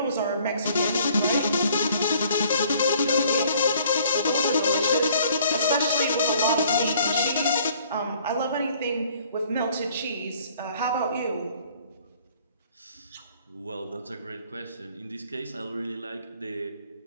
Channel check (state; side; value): inverted; both; correlation -0.58